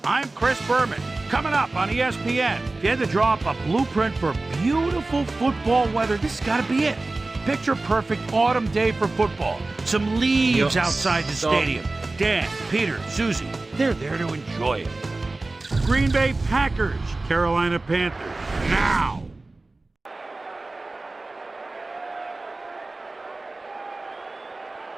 I'm Chris Berman. Coming up on ESPN, if you had to draw up a blueprint for beautiful football weather, this has got to be it. Picture perfect autumn day for football. Some leaves outside the stadium. Dan, Peter, Susie, they're there to enjoy it. Green Bay Packers, Carolina Panthers. Now.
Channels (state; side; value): quieter; left; 3.2 dB